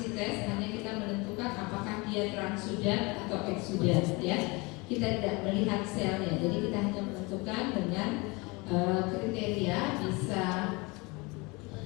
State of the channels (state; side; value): quieter; right; 26.2 dB